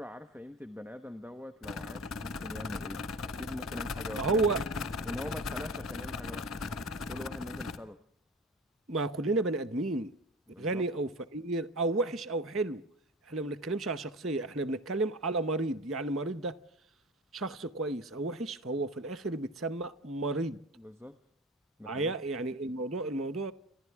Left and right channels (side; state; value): both; normal; correlation 0.32